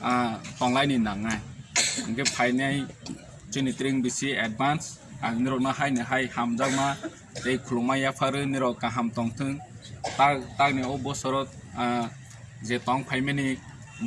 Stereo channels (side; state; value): both; identical; correlation 1.00